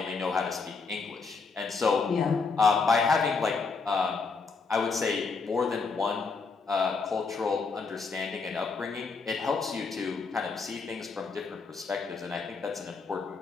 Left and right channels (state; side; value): quieter; right; 4.7 dB